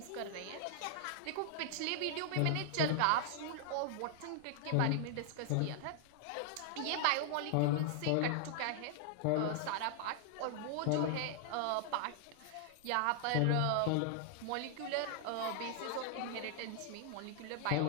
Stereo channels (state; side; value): different; both; correlation 0.00